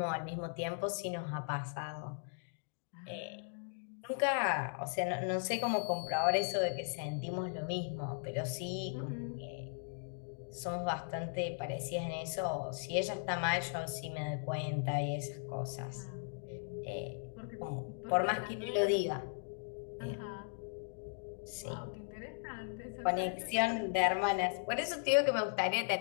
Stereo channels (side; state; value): right; silent; digital silence